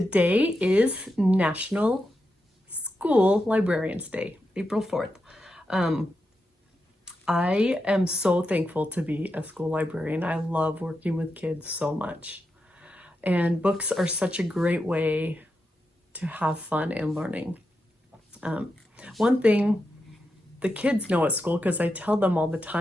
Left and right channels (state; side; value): normal; both; correlation 0.87